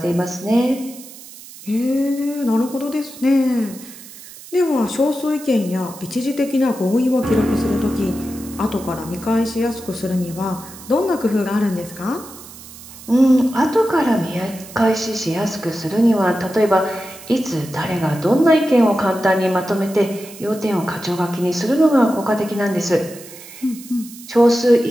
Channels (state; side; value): noise; right; hiss, 17 dB below the sound